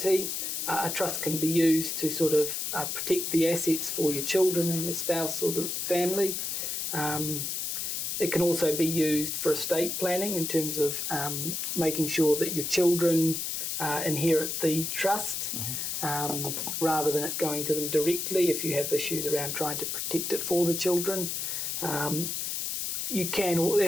a trust can be used to sort of protect the assets for your children and your spouse or the family. It can also be used for estate planning in terms of making sure that your children inherit the trust rather than it going to them directly if you have issues around trying to protect it for the children.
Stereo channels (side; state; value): left; noise; hiss, 2 dB below the sound